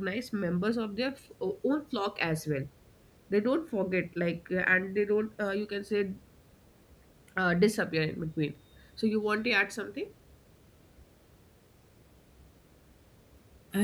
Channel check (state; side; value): identical; both; correlation 1.00